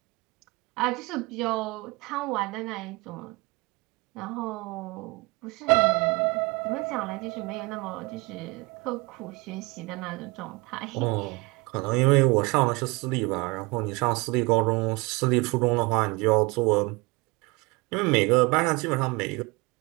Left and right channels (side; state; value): left; quieter; 25.5 dB